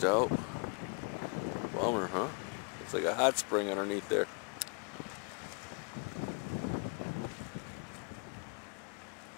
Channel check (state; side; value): quieter; right; 37.3 dB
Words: out. Bummer, huh? Looks like a hot spring underneath there.